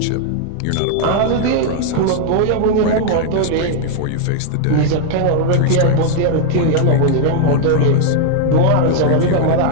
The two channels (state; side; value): different; both; correlation 0.00